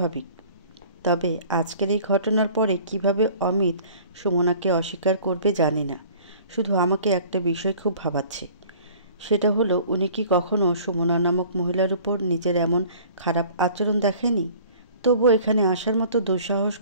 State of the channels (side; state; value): both; inverted; correlation -0.49